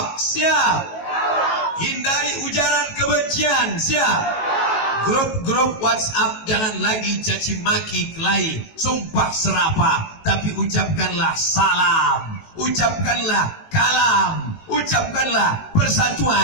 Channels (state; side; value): late; right; 18 ms